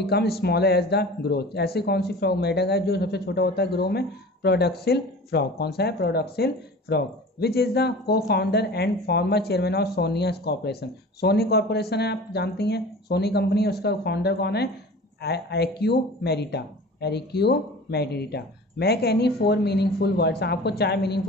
smaller as the growth, ऐसे कौन सी फ्रॉग मेढक है जो सबसे छोटा होता है ग्रो में? प्रोडक्सिल फ्रॉग। कौन सा है? प्रोडक्सिल frog. Which is the co founder and former chairman of Sonia corporation, Sony corporation है, आप जानती हैं, सोनी कंपनी, उसका फाउंडर कौन है? एक्यू मेरिटा। मैक एनी 4 मीनिंगफुल वर्ड्स, आपको 4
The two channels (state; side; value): normal; both; correlation 0.39